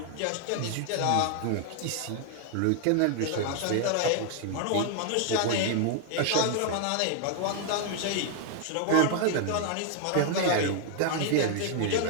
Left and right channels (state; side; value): different; both; correlation 0.00